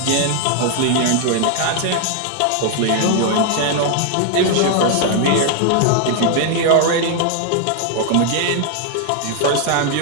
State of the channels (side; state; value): both; different; correlation 0.00